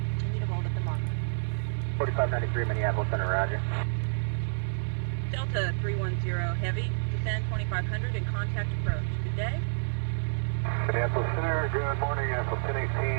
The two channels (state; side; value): silent; left; digital silence